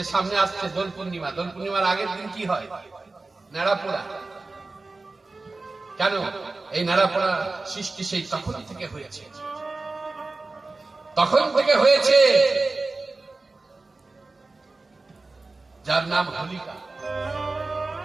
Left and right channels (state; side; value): quieter; left; 3.5 dB